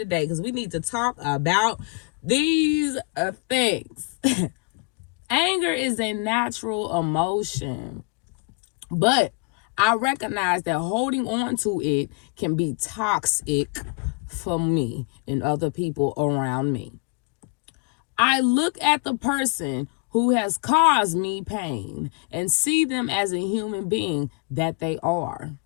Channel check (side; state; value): right; quieter; 33.5 dB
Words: because we need to talk about these things. Anger is a natural emotion, but I recognize that holding on to it can be toxic for me and other people around me. I look at the person who has caused me pain and see them as a human being that they are.